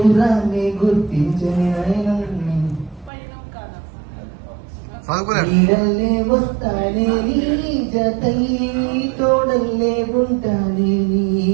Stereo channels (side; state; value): left; drops out; at 3.1 s